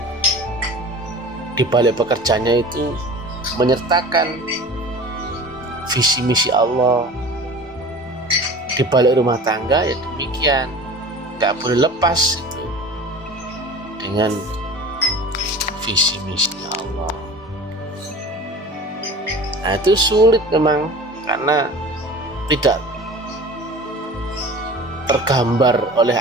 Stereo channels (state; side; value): normal; both; correlation 0.39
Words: Di balik pekerjaannya itu menyertakan visi misi Allah. Di balik rumah tangga ya demikian, nggak boleh lepas itu dengan visi misi Allah. Nah, itu sulit memang karena tidak tergambar oleh